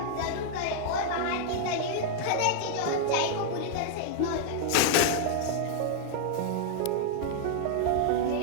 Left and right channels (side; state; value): both; different; correlation 0.00